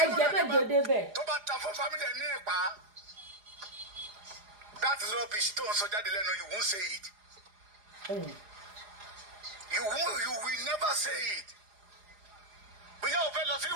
jẹ́ mẹ́jọ débẹ̀. tó bá ta fún family ẹ̀ ní ìpa that is rubbish tó ń sọ jáde lẹ́nu you won't say it. You will never say it. bóyá o fẹ́ lọ sí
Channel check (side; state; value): left; late; 4.8 ms